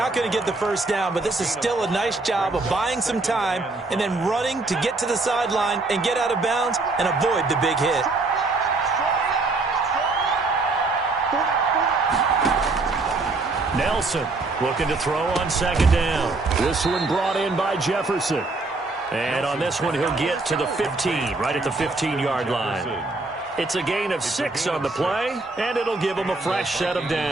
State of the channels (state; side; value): quieter; left; 3.4 dB